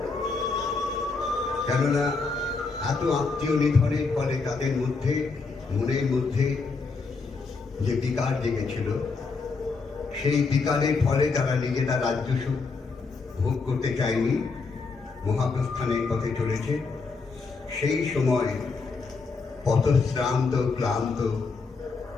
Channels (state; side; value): quieter; right; 4.4 dB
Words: কেননা এত আত্মীয় নিধনের ফলে তাদের মধ্যে মনের মধ্যে যে বিকার জেগেছিল, সেই বিকারের ফলে তারা নিজেরা রাজ্য সুখ ভোগ করতে চায়নি, মহাপ্রস্থানের পথে চলেছে। সেই সময় পথশ্রান্ত ক্লান্ত